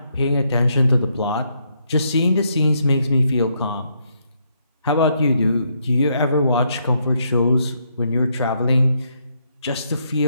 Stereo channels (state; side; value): inverted; both; correlation -0.75